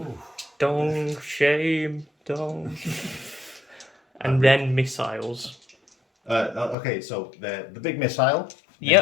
Dong. Shame. Dong. And then missiles. Okay, so the big missile.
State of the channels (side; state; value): right; drops out; at 6.8 s